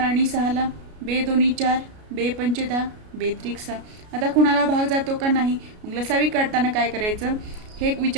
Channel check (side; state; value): left; late; 33 ms